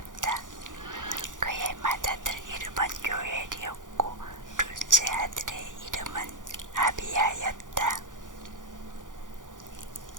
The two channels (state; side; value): late; left; 0.88 ms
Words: 그의 맏아들 이름은 요엘이었고 둘째 아들의 이름은 아비야였다.